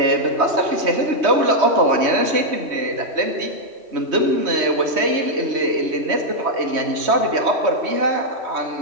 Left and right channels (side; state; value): left; late; 3.2 ms